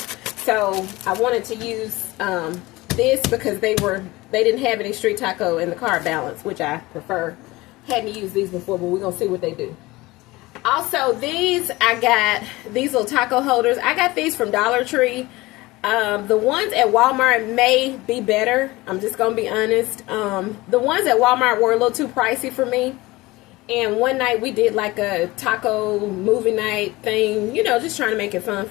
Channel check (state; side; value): quieter; right; 20.4 dB